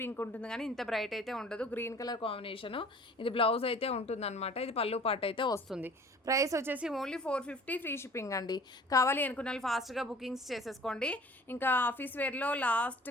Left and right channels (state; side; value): normal; both; correlation 0.48